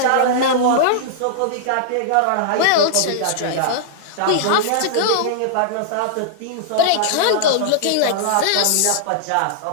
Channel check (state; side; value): different; both; correlation -0.01